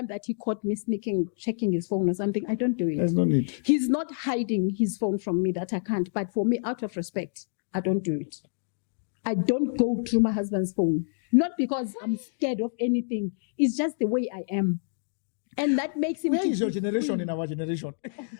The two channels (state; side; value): silent; right; digital silence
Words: that he caught me sneaking, checking his phone or something. I don't do it. There's no need. He's not hiding his phone from me that I can't. But for me, out of respect, I don't do it. I don't go through my husband's phone. Not because I'm scared of anything. It's just the way I am. And that makes him... Where is your generation in our generation?